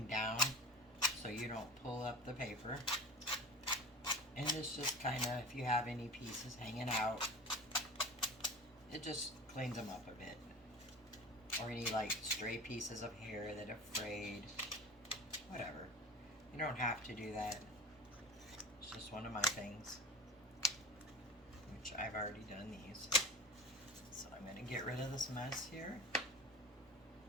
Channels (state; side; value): normal; both; correlation 0.34